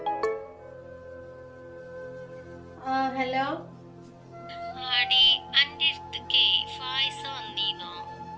ഹലോ. ആടി അന്റെ അടുത്തേക്ക് ഫായിസ വന്നീന്നോ?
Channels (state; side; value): identical; both; correlation 1.00